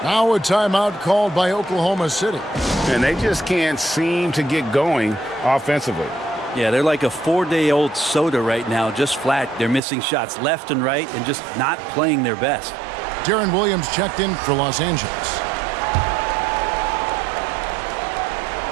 Now a timeout called by Oklahoma City. And they just can't seem to get going offensively. Yeah, they're like a 4-day-old soda right now, just flat. They're missing shots left and right and just not playing their best. Deron Williams checked in for Los Angeles.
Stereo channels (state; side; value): drops out; left; at 9.8 s